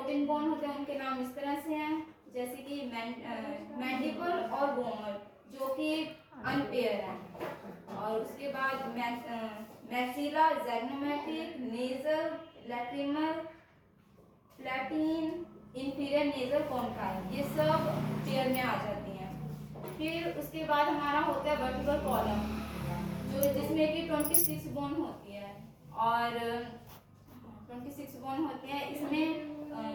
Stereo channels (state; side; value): identical; both; correlation 1.00